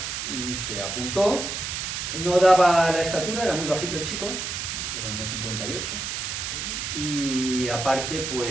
se apuntó, no daba la estatura, era muy bajito el chico, era 1,58, y aparte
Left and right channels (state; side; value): noise; right; hiss, 4 dB below the sound